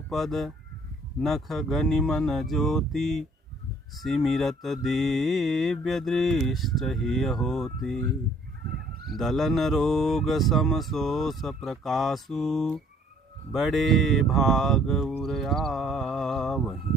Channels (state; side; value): normal; both; correlation 0.59